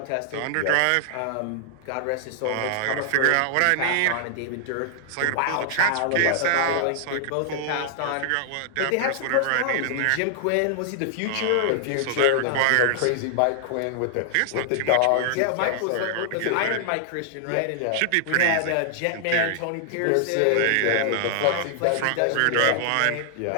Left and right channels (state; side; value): different; both; correlation -0.01